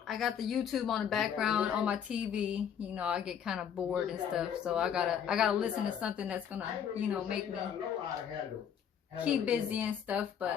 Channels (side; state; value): right; quieter; 8.3 dB